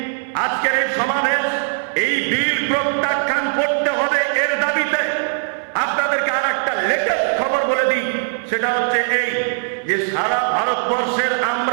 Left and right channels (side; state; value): left; silent; 66 dB below the other